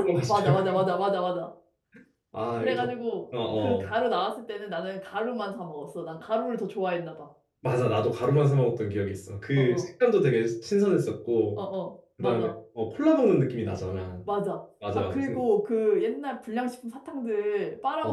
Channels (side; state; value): both; identical; correlation 1.00